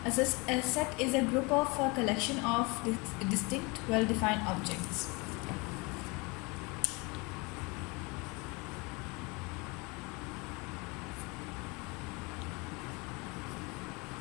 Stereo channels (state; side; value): quieter; right; 27.8 dB